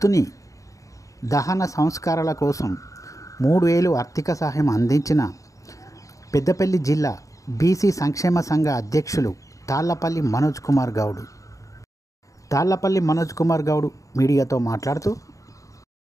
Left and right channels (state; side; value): late; right; 0.16 ms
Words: దహన సంస్కారాల కోసం 3,000 ఆర్థిక సహాయం అందించిన పెద్దపల్లి జిల్లా బీసీ సంక్షేమ సంఘ అధ్యక్షులు తాళ్లపల్లి మనోజ్ కుమార్ గౌడ్. తాళ్లపల్లి మనోజ్ కుమార్ గౌడ్ మీడియాతో మాట్లాడుతూ,